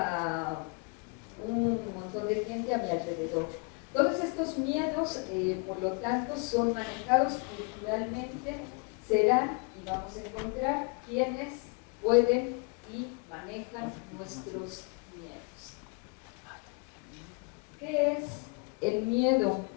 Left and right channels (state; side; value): quieter; right; 32.1 dB